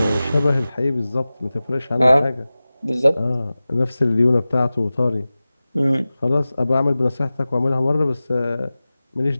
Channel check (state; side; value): inverted; both; correlation -0.97